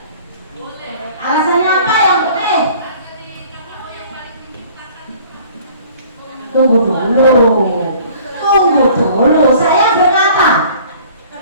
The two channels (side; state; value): both; inverted; correlation -0.51